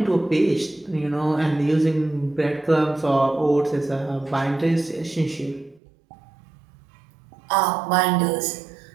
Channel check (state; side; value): drops out; left; at 5.8 s